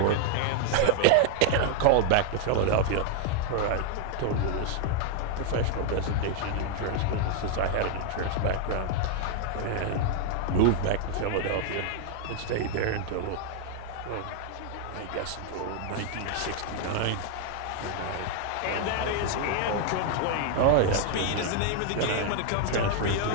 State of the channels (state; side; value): different; both; correlation 0.00